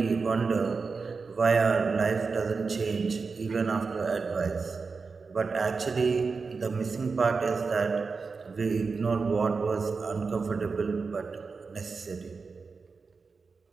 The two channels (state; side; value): quieter; left; 4.7 dB